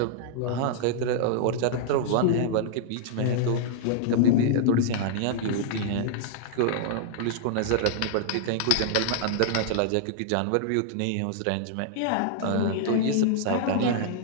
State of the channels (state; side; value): different; both; correlation -0.01